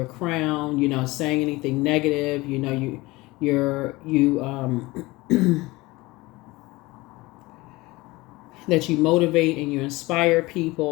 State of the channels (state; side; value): quieter; right; 21.3 dB